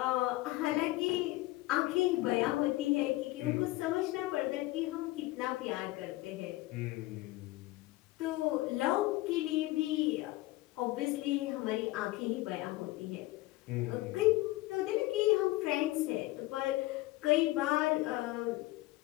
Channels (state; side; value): quieter; right; 19.2 dB